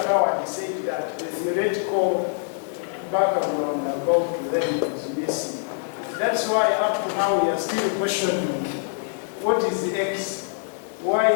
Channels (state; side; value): silent; right; digital silence